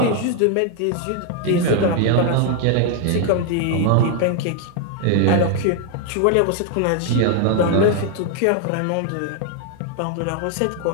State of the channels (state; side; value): different; both; correlation 0.00